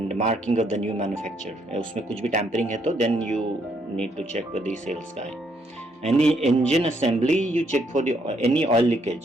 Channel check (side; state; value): both; normal; correlation 0.72